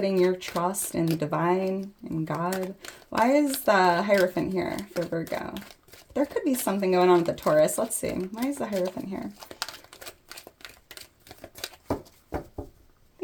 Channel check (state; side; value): identical; both; correlation 1.00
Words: your trust in the divine, in God. Why is the Hierophant here for Virgo? There could be something going on with the Taurus. Let's see. Why is the Hierophant here?